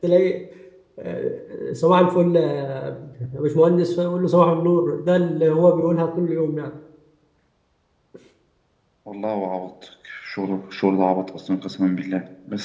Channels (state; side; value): identical; both; correlation 1.00